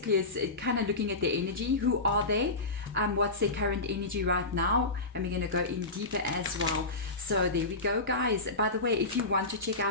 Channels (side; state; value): right; quieter; 3.1 dB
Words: is kind of looking at their energy. Who are they? What's their current energy right now? And we're going to go in deeper as well. So there we go, guys. By the way, if you want to check